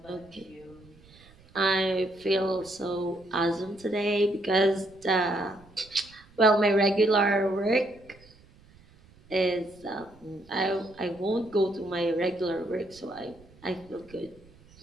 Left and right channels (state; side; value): noise; right; rumble, 26 dB below the sound